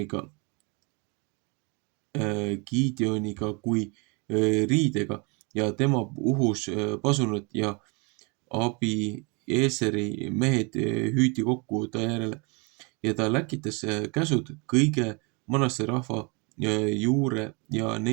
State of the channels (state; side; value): quieter; left; 31.3 dB